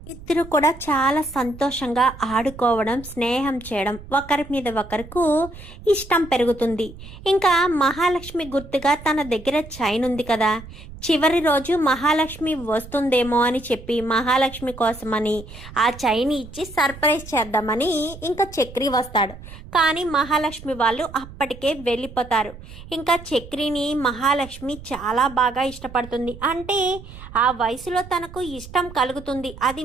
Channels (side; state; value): right; noise; rumble, 16 dB below the sound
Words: ఇద్దరు కూడా చాలా సంతోషంగా ఆడుకోవడం, స్నేహం చేయడం, ఒకరి మీద ఒకరికి ఇష్టం పెరుగుతుంది. ఇంకా మహాలక్ష్మి గుర్తుగా తన దగ్గర చైన్ ఉంది కదా, చివరి రోజు మహాలక్ష్మి వస్తుందేమో అని చెప్పి మహాలక్ష్మి కోసమని ఆ చైన్ ఇచ్చి సర్ప్రైజ్ చేద్దామని ఇంకా చక్రి వస్తాడు. కానీ మహాలక్ష్మి వాళ్ళు అప్పటికే వెళ్ళిపోతారు. ఇంకా చక్రిని మహాలక్ష్మి చాలా బాగా ఇష్టపడుతుంది. అంటే ఆ వయసులో తనకు ఇష్టం కలుగుతుంది, అది